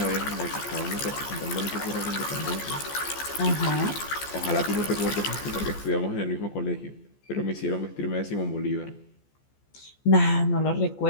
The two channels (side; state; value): right; late; 14 ms